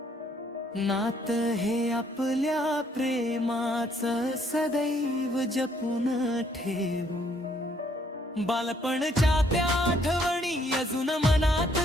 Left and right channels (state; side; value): normal; both; correlation 0.67